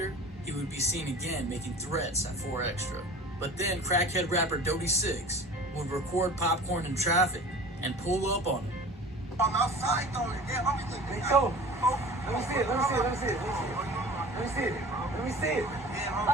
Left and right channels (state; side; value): normal; both; correlation 0.40